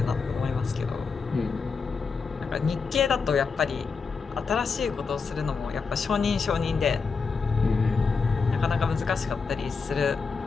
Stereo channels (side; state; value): right; quieter; 5.0 dB